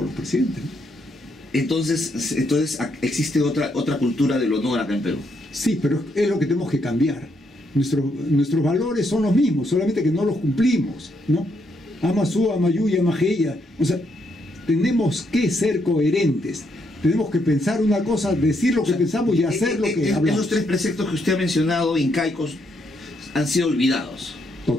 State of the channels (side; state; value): both; normal; correlation 0.76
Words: los presidentes, ¿no? Entonces existe otra cultura del honor acá en Perú. Sí, pero es lo que tenemos que cambiar. Nuestros valores son los mismos, solamente que no los cumplimos, ¿no? Amasú, Amayuya, Amajeya. O sea, tenemos que ser coherentes. Tenemos que pensar una cosa, decir lo que pensamos y hacer lo que hablamos. Esos tres preceptos que usted ha mencionado, incaicos, han sido olvidados.